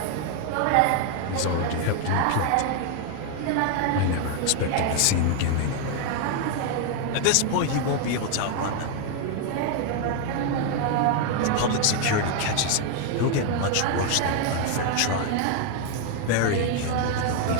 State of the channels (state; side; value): different; both; correlation 0.01